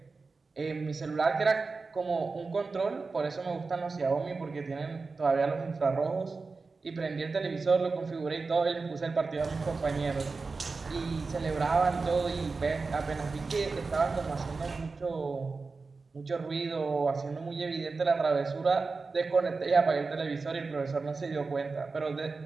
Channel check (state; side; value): quieter; left; 4.2 dB